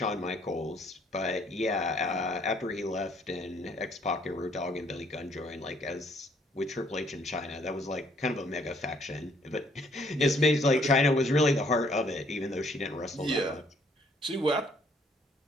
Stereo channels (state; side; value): normal; both; correlation 0.65